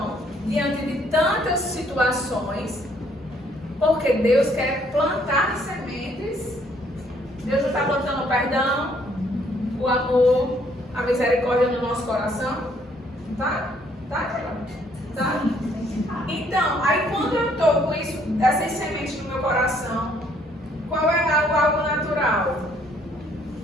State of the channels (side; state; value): both; normal; correlation 0.65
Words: diante de tantas situações, porque Deus quer plantar sementes. Deus já está plantando o perdão, o amor, a misericórdia no nosso coração. Tá? Tá? Então, aí quando eu estou com isso, essas sementes no meu coração, qual é algo natural?